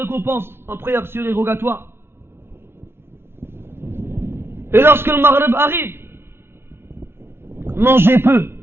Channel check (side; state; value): left; late; 0.12 ms